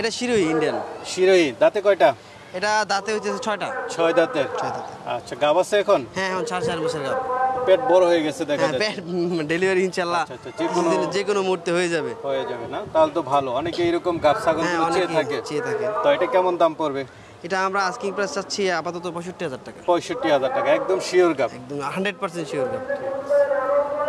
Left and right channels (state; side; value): identical; both; correlation 1.00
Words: এটা শিরোহী, ইন্ডিয়ান শিরোহী। দাঁতে কয়টা? এটা দাঁতে হইতেছে 6টা। 6 দাঁতের? 6 দাঁতে। আচ্ছা, গাব আছে এখন? হ্যাঁ, এখন 4 মাসের গাব। পেট বড় হয়ে গেছে দেখা হ্যাঁ, যাচ্ছে। ডেলিভারি ইনশাআল্লাহ যে কোনো মুহূর্তে হয়ে যাবে। না? তাহলে তো ভালো। অনেকে এরকম গাব ছাগল চেয়ে থাকে। তো এটা কেমন দাম পড়বে? এটা আমরা আস্কিং প্রাইস চাচ্ছি আপাতত 65,000 টাকা। 65,000 টাকা, একদম শিওর গাব? একদম 100% শিওর গাব।